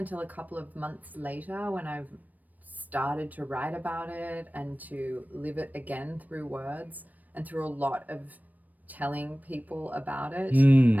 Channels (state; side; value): late; left; 0.082 ms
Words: a couple of months later, when I've started to write about it and to live it again through words and through a lot of telling people about it